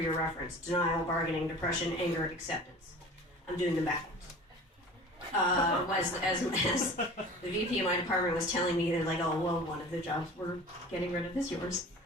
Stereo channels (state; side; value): normal; both; correlation 0.41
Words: reference, denial, bargaining, depression, anger, acceptance. I'm doing them backwards. As the VP of my department was telling me, they're like, "Oh, well, one of the jobs we're getting rid of is yours."